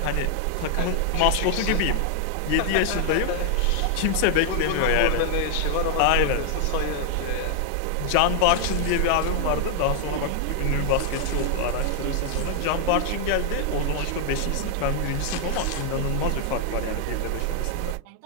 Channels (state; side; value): different; both; correlation 0.00